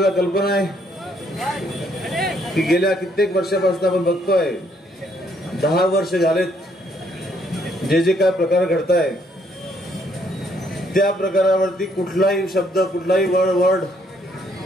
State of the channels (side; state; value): both; normal; correlation 0.69